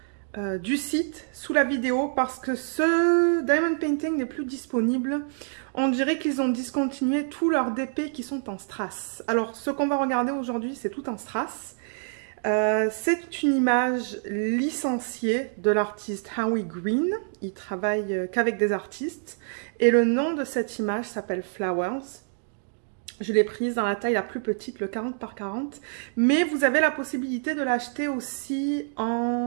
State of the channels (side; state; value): left; silent; digital silence